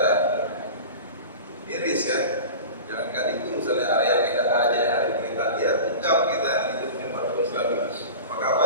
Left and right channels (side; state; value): both; inverted; correlation -0.33